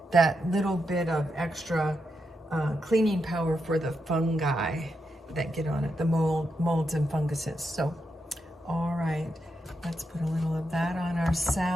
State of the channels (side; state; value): both; normal; correlation 0.84